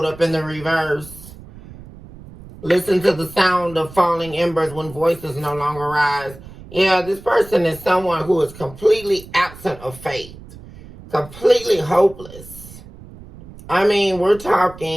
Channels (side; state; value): right; noise; rumble, 18 dB below the sound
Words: up in the reverse. Listen to the sound of falling embers when voices no longer rise. Yeah, this person is someone who is completely absent of faith. Completely hopeless. I mean, we're